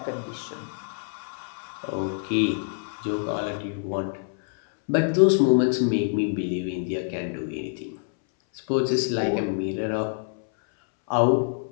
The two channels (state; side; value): silent; right; 61 dB below the other